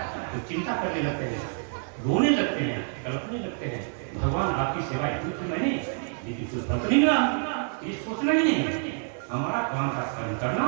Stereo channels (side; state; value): left; silent; 59 dB below the other